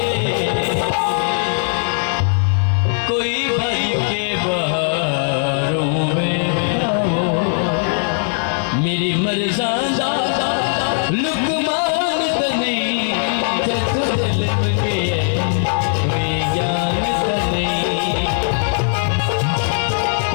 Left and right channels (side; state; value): right; silent; 59 dB below the other